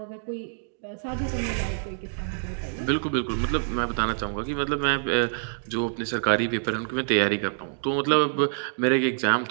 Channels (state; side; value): silent; left; digital silence